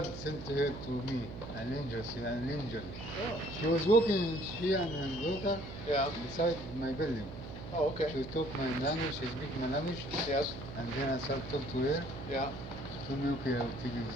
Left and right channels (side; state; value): right; noise; hum, 11 dB below the sound